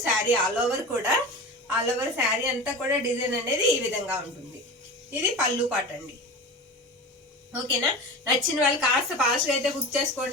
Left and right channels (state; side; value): normal; both; correlation 0.30